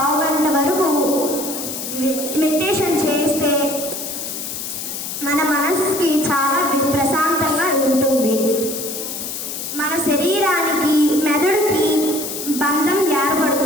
గంట వరకు మెడిటేషన్ చేస్తే మన మనసుకి చాలా ప్రశాంతంగా ఉంటుంది. మన శరీరానికి మెదడుకి బంధం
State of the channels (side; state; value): left; noise; hiss, 6 dB below the sound